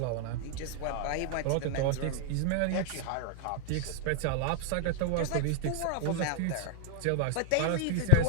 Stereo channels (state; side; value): different; both; correlation 0.00